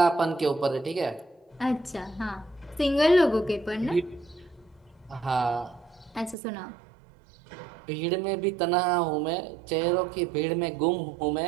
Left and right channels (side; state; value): left; drops out; at 6.4 s